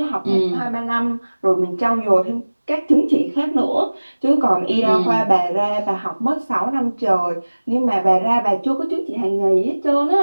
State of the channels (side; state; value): both; inverted; correlation -1.00